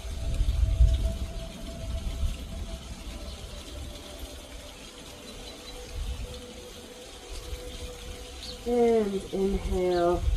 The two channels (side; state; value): both; identical; correlation 1.00